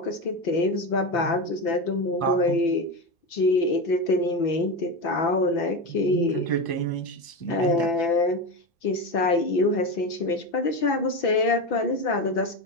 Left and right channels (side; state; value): right; late; 2.6 ms